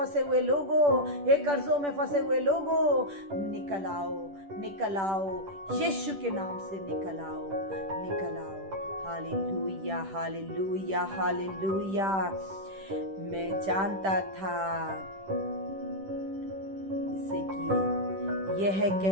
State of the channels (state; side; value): late; left; 10 ms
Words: हुए लोगों, हे कर्जों में फंसे हुए लोगों, निकल आओ, निकल आओ, यीशु के नाम से निकल आओ, निकल आओ। Hallelujah, hallelujah, hallelujah. मैं जानता था, जैसे कि यह